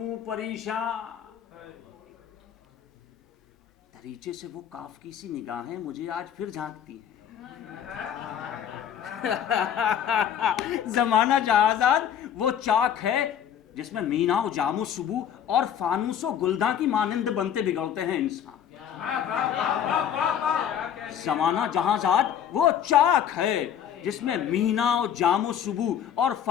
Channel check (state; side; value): quieter; right; 9.2 dB